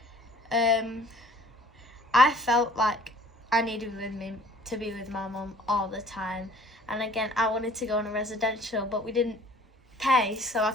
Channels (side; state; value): both; normal; correlation 0.53